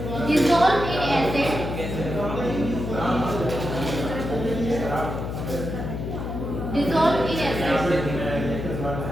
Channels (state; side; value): noise; left; hum, 5 dB below the sound